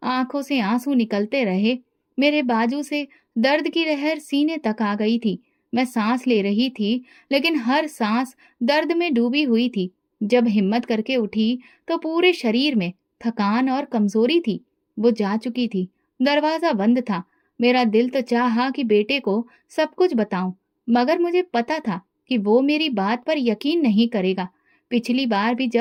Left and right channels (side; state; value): both; identical; correlation 1.00